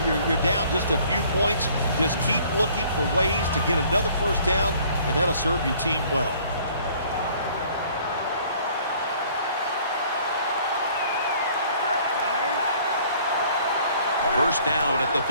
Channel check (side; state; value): both; inverted; correlation -0.56